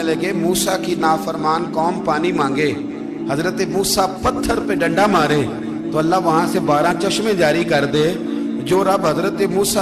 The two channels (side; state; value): both; identical; correlation 1.00